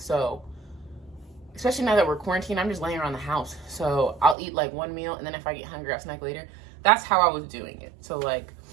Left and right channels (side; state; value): left; drops out; at 4.4 s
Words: especially now that we're quarantined, I'm just laying around the house. So I'll eat like one meal, and then if I get hungry, I'll snack later. That's how I was doing it. So like,